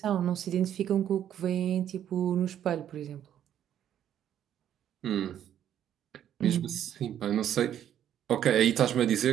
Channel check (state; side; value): quieter; left; 10.4 dB